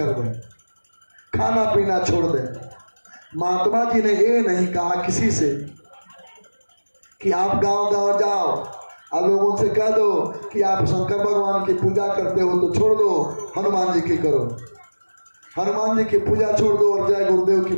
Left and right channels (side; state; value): both; inverted; correlation -1.00